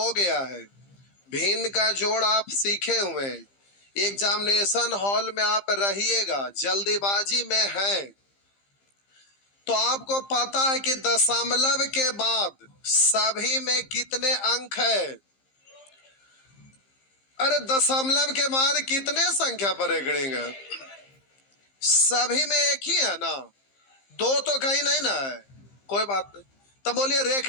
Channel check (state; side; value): late; right; 15 ms